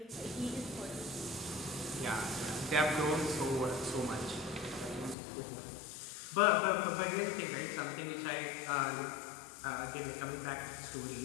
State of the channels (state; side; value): drops out; right; at 5.2 s